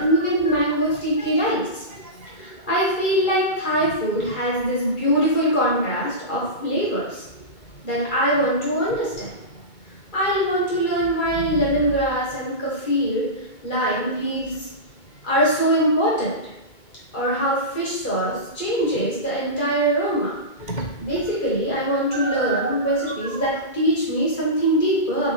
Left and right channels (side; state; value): right; late; 2.2 ms